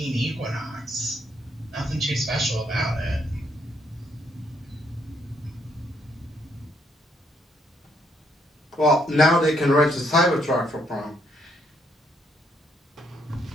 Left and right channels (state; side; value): normal; both; correlation 0.72